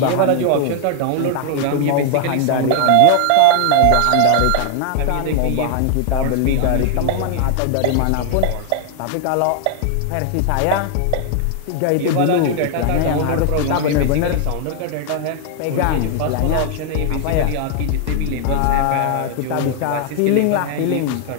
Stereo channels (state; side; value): different; both; correlation 0.00